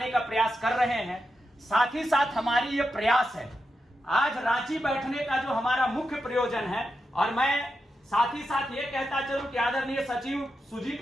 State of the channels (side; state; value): both; normal; correlation 0.88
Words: का प्रयास कर रहे हैं, साथ ही साथ हमारी ये प्रयास है आज रांची बैठने का जो हमारा मुख्य प्रयोजन है। और मैं साथ ही साथ ये कहता चलूं कि आदरणीय सचिव